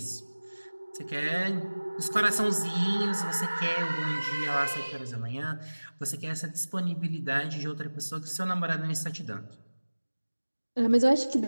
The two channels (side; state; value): both; inverted; correlation -1.00